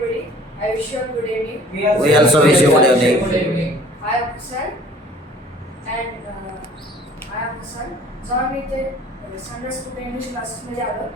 I wish you a good evening. We also wish you good evening. I am Hassan and I am Hassan. जेव्हा मी इथे Sunday school English क्लासेसमध्ये आलो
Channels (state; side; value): normal; both; correlation 0.52